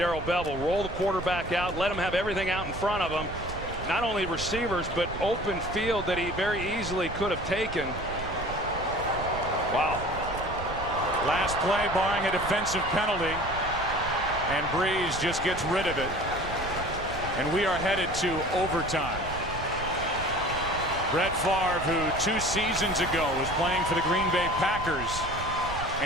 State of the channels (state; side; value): noise; right; rumble, 9 dB below the sound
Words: Bevell. Roll the quarterback out, let him have everything out in front of him. Not only receivers, but open field that he very easily could have taken. Wow. Last play barring a defensive penalty, and Breeze just gets rid of it. And we are headed to overtime. Brett Favre, who 2 seasons ago was playing for the Green Bay Packers,